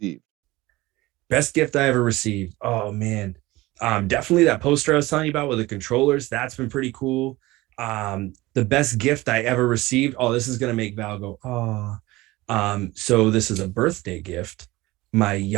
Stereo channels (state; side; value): quieter; left; 19.7 dB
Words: Best gift I ever received. Oh man. Definitely that poster I was telling you about with the controllers. That's been pretty cool. The best gift I ever received. Oh, this is gonna make Val go, oh. So this is a birthday gift. My